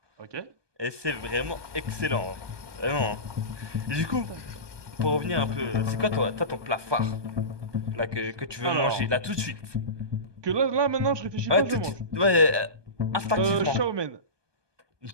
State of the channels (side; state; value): left; late; 1.2 ms